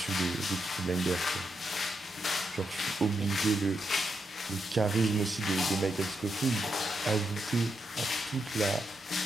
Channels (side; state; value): both; normal; correlation 0.83